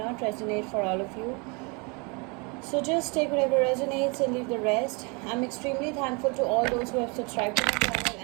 resonate for all of you. So just take whatever resonates and leave the rest. I'm extremely thankful to all those who have subscribed to my channel,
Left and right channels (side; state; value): left; quieter; 31.0 dB